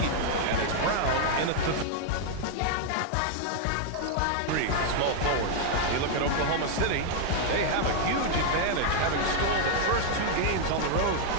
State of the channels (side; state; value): both; different; correlation 0.00